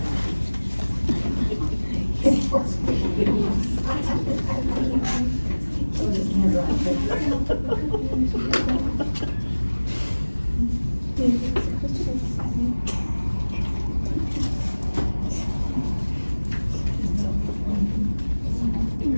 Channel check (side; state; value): both; inverted; correlation -1.00